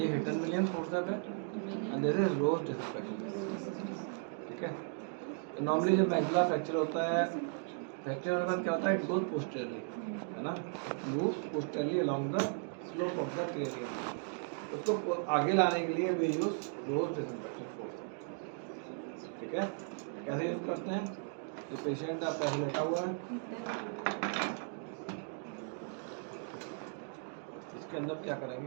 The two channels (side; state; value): left; silent; 54 dB below the other